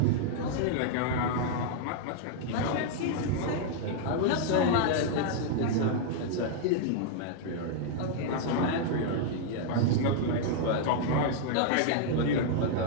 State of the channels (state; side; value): different; both; correlation -0.01